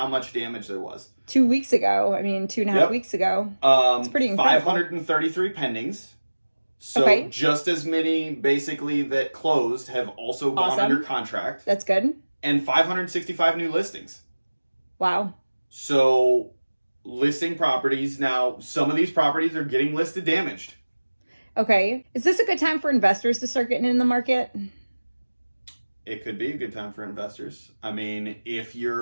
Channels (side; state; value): both; inverted; correlation -1.00